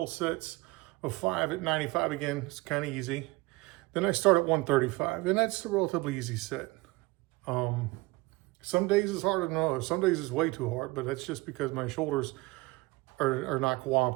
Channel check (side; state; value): left; quieter; 22.7 dB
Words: sets of 5 at 95 again. It's kind of easy. Then I start at 135, and that's a relatively easy set. Some days it's harder than others. Some days it's way too hard, but that's just because my shoulders are not